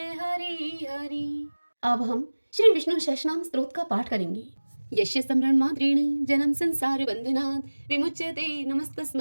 हरि हरि। अब हम श्री विष्णु सहस्रनाम स्तोत्र का पाठ करेंगे। यस्य स्मरण मात्रेण जन्म संसार बंधनात् विमुच्यते,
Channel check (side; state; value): both; inverted; correlation -1.00